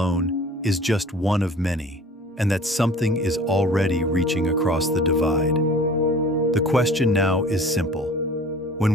is just one of many, and that something is already reaching across the divide. The question now is simple. When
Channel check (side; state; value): both; normal; correlation 0.46